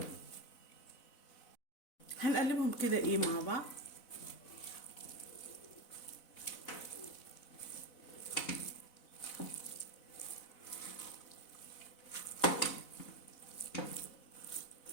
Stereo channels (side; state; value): right; late; 4.0 ms